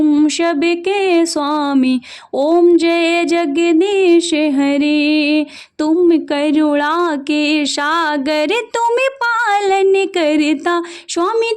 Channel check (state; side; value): identical; both; correlation 1.00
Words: सबके स्वामी। ओम जय जगदीश हरे। तुम करुणा के सागर तुम पालन करता। स्वामी